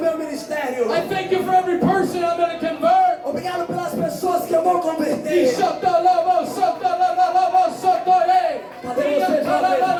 ministério. I thank you for every person I'm going to convert. Obrigado pelas pessoas que eu vou converter. Cadê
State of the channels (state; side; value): identical; both; correlation 1.00